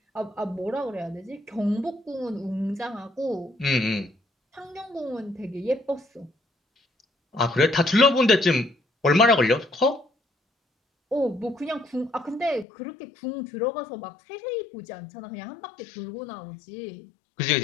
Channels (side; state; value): right; drops out; at 12.7 s